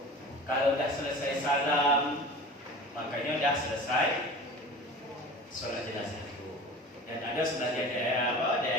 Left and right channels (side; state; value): both; normal; correlation 0.38